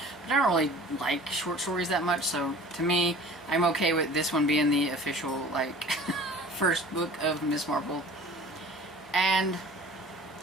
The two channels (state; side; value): normal; both; correlation 0.44